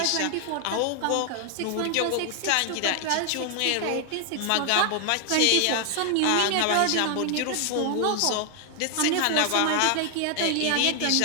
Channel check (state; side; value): different; both; correlation 0.00